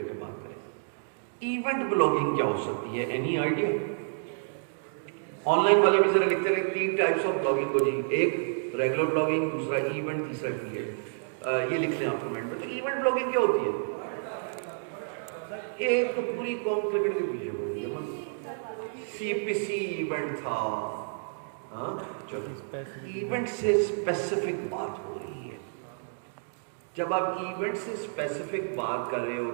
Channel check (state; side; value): silent; left; digital silence